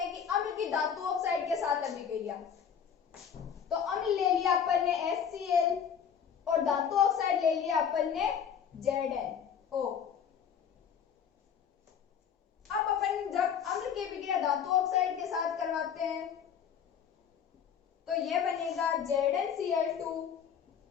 कि अम्ल की धातु ऑक्साइड के साथ अभिक्रिया। तो अम्ल ले लिया अपन ने HCl और धातु ऑक्साइड ले लिया अपन ने ZnO। अब अपन जब अम्ल की अभिक्रिया धातु ऑक्साइड के साथ करवाते हैं तो यह बनेगा ZnCl2,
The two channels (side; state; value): right; quieter; 7.8 dB